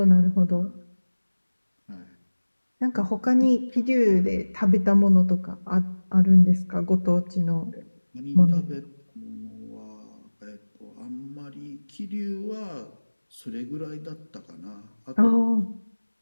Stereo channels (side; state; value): both; inverted; correlation -1.00